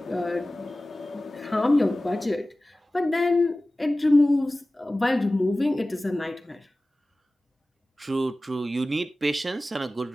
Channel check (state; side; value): normal; both; correlation 0.97